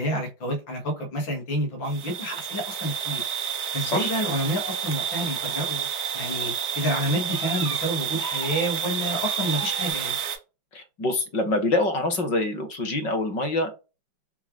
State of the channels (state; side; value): late; right; 5.4 ms